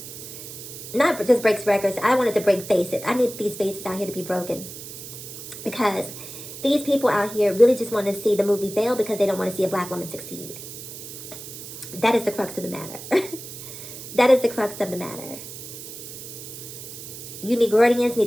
Not just breaks records. I want it to break faces. I need these faces out here to be broken. Because these people out here really just want to see the movie fail because they don't want to see a black woman succeed. That is the crux of the matter. That is the crux of the matter. You Negroidians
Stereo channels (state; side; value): noise; right; hiss, 12 dB below the sound